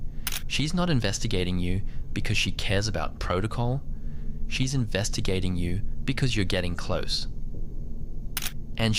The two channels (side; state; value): both; identical; correlation 1.00